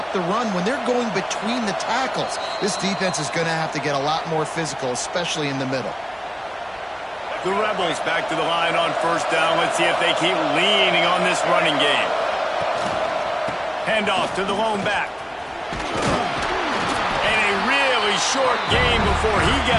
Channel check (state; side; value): identical; both; correlation 1.00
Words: the run when they're going between the tackles. This defense is going to have to get a lot more physical, especially in the middle. The Rebels back to the line on 1st down. Let's see if they keep leaning on this running game. Handoff to the lone back. And a really short game before he